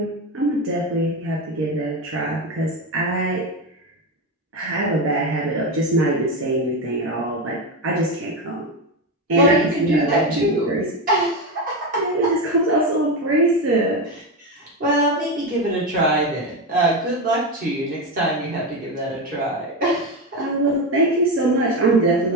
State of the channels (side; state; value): both; normal; correlation 0.14